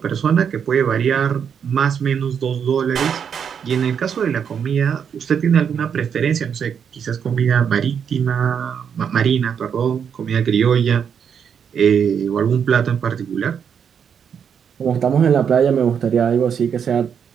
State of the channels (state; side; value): quieter; left; 7.5 dB